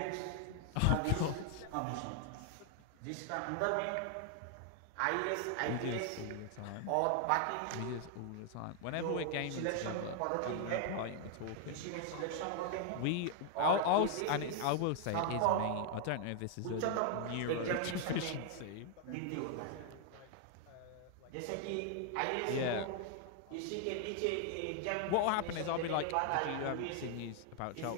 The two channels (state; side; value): different; both; correlation 0.00